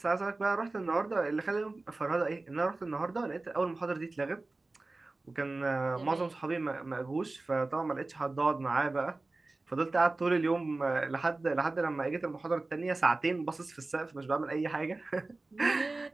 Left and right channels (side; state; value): left; quieter; 3.2 dB